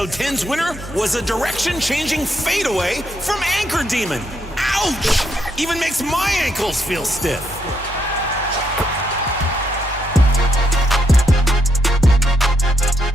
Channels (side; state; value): both; normal; correlation 0.77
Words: 10's winner was a direction-changing fadeaway from Anchor Demon. Ouch! Even makes my ankles feel stiff.